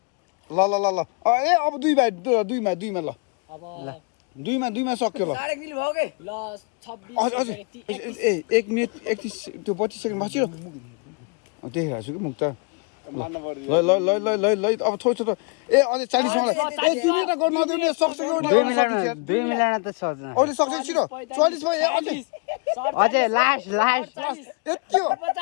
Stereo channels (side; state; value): right; quieter; 35.6 dB